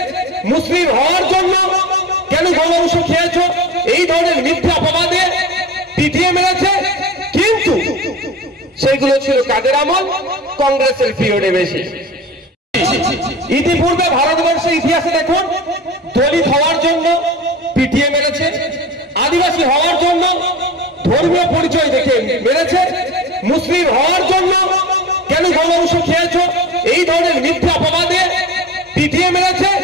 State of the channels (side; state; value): both; normal; correlation 0.33